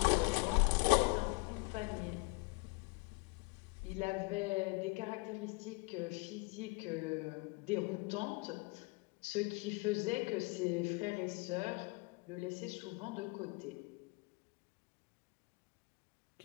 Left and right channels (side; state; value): right; quieter; 28.9 dB